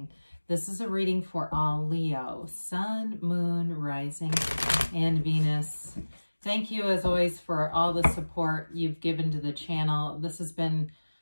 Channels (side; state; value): both; inverted; correlation -1.00